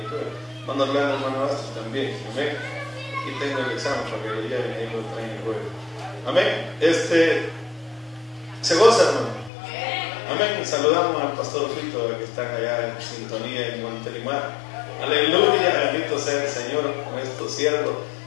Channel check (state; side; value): drops out; right; at 9.5 s